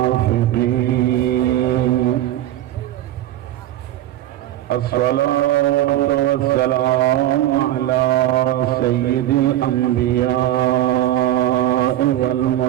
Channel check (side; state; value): left; quieter; 13.3 dB